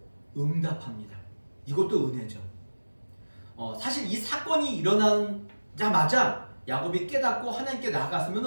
응답합니다. 이것도 은혜죠. 사실 이 사건이 일어나자마자 야곱이 깨닫고 하나님께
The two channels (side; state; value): both; inverted; correlation -1.00